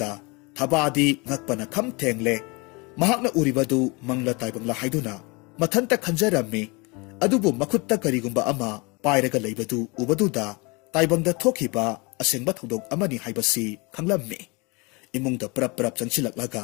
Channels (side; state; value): right; quieter; 27.7 dB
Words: thabadi ngakpana kham thengle mahakna uribadu mangla taibangla haiduna mathanta khanjarammi adubu makhutta karigumba ama pairaga leibadu ubaduda taibangda thokhiba asengba thodok amani haibasi khanglammi imungda prap prap changsilaklaga